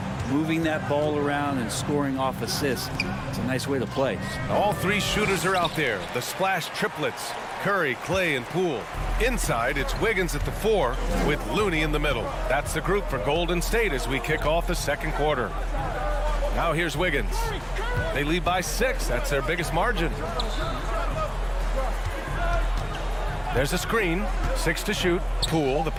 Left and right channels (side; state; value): both; identical; correlation 1.00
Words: moving that ball around and scoring off assists, it's a nice way to play. All three shooters are out there. The splash triplets. Curry, Clay, and Poole. Inside, it's Wiggins at the 4 with Looney in the middle. That's the group for Golden State as we kick off the second quarter. Now here's Wiggins. They lead by 6. That's their biggest margin. There's a screen. 6 to shoot. Poole, the